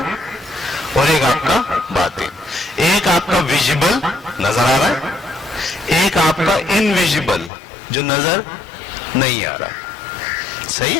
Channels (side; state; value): right; drops out; at 7.5 s